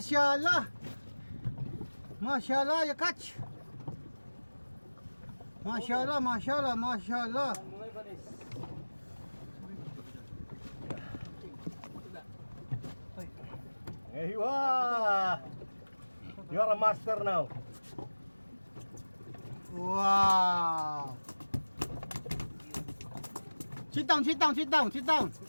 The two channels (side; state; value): both; inverted; correlation -1.00